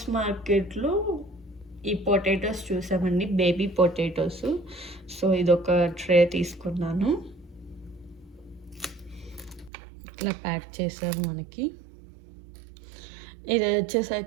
మార్కెట్లో ఈ పొటాటోస్ చూసామండి, బేబీ పొటాటోస్. సో ఇదొక ట్రే తీసుకున్నాను. ఇట్లా ప్యాక్ చేశారు మనకి. ఇది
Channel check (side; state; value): left; drops out; at 9.7 s